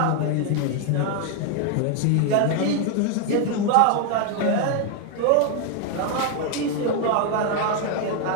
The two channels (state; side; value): different; both; correlation 0.01